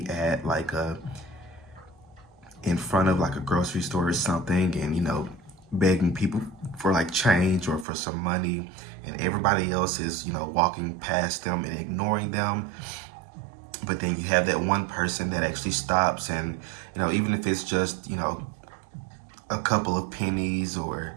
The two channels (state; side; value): drops out; left; at 7.9 s